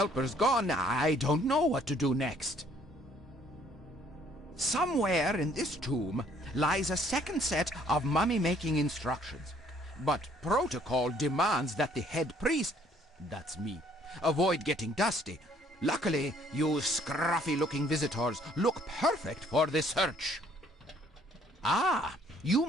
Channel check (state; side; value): normal; both; correlation 0.62